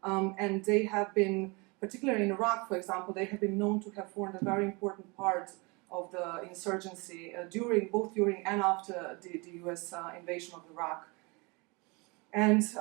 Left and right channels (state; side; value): quieter; left; 28.1 dB